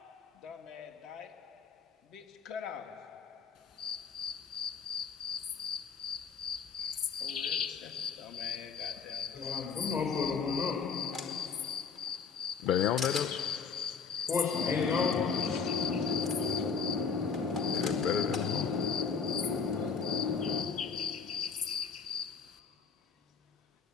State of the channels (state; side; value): quieter; right; 5.8 dB